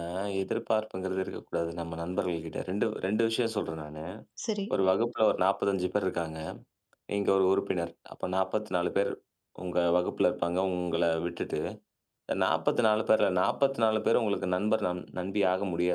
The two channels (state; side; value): identical; both; correlation 1.00